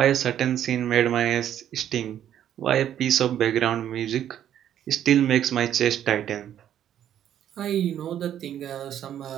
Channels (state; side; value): quieter; left; 10.5 dB